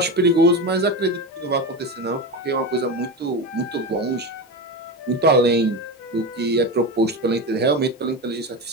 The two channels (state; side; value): normal; both; correlation 0.21